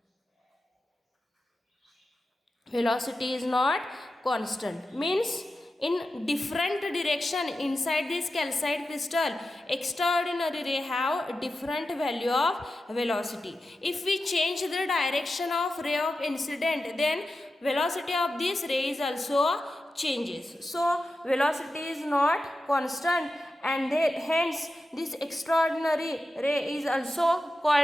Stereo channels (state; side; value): normal; both; correlation 0.91